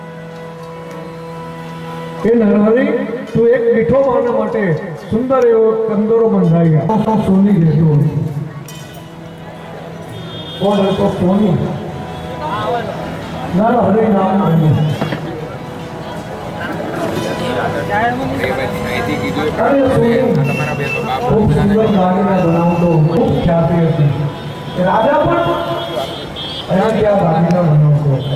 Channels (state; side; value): identical; both; correlation 1.00